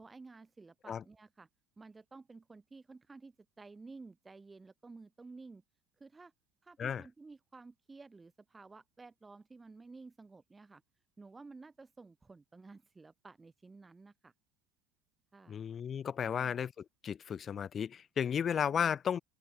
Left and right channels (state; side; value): quieter; right; 7.0 dB